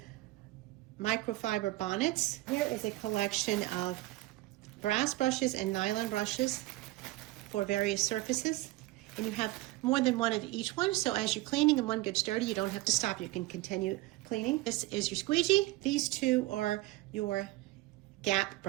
microfiber bonnets. Here is a collection of brass brushes and nylon brushes for various surfaces, and you have more than one of each one, so as you're cleaning and one gets dirty, you don't have to stop, you can continue cleaning. This is your squeegee. These 2 are your gap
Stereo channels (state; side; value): quieter; left; 18.8 dB